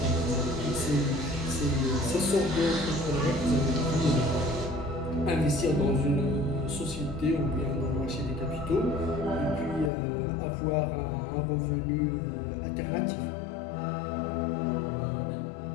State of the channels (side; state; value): right; drops out; at 9.9 s